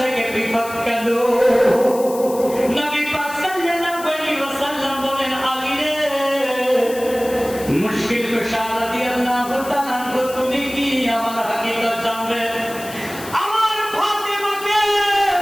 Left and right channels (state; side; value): noise; left; hiss, 14 dB below the sound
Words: পৃথক কেন নবী পাক সাল্লাল্লাহু আলাইহি ওয়াসাল্লাম বলেন আলী রে মুশকিল কুশা রাদিয়াল্লাহু তাআলা তুমি কি আমার হাকিকত জানবে